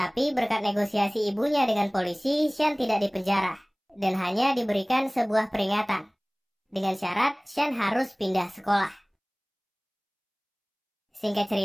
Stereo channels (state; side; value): identical; both; correlation 1.00